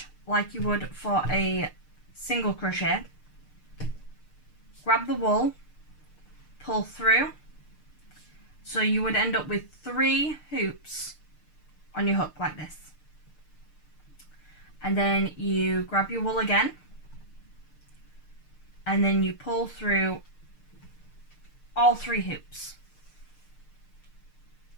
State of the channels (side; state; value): right; late; 6.6 ms